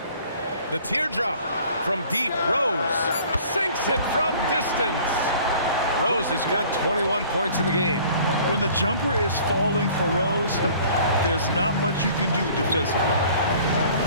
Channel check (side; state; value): both; inverted; correlation -0.51